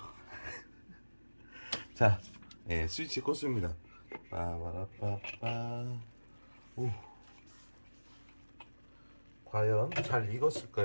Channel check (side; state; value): both; inverted; correlation -1.00